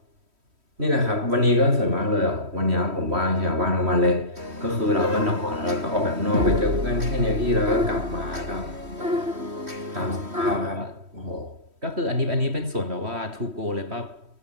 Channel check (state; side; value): late; left; 3.1 ms